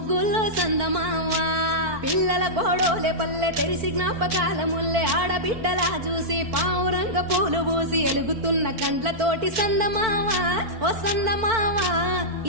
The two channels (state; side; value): late; left; 4.5 ms